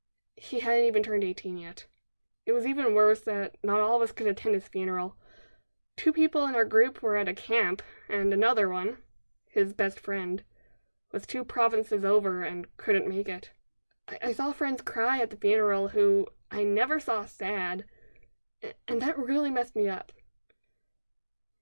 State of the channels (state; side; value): inverted; both; correlation -1.00